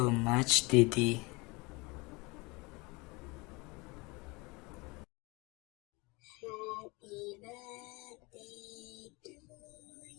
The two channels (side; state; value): right; quieter; 26.2 dB